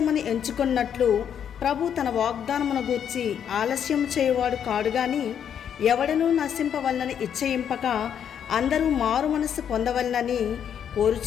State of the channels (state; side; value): quieter; right; 8.6 dB